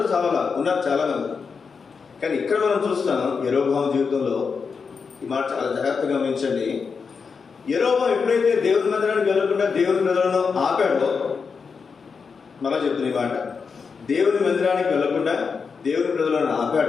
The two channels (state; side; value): quieter; right; 5.5 dB